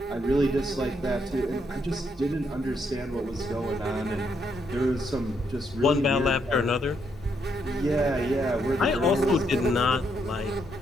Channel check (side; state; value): both; normal; correlation 0.76